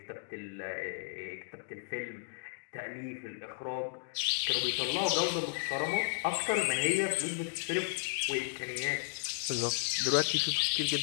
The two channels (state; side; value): silent; right; digital silence